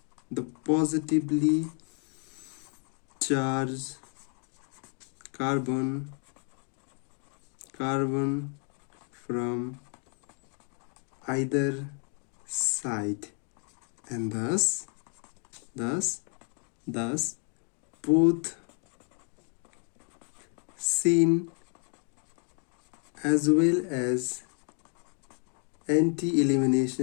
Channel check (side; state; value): right; quieter; 39.2 dB